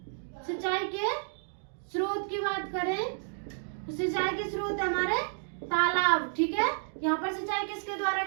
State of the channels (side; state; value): left; silent; 57 dB below the other